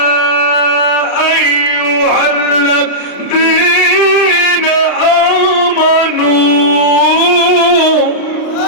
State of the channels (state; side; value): late; right; 35 ms